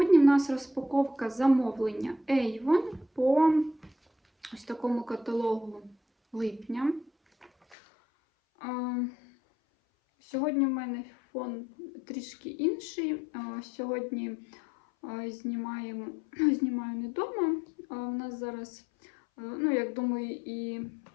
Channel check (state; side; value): drops out; right; at 7.8 s